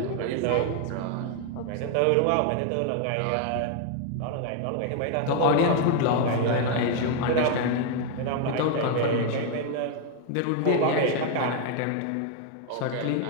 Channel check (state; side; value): different; both; correlation 0.00